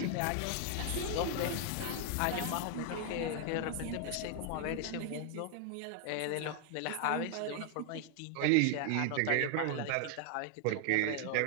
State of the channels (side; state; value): both; different; correlation 0.00